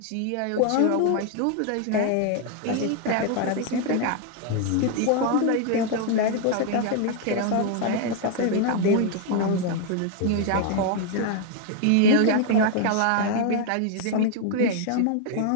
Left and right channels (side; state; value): both; different; correlation 0.00